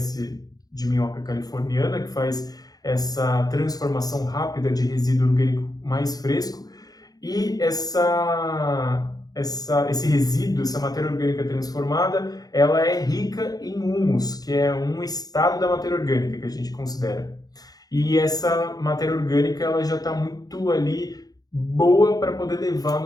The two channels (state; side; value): late; right; 0.18 ms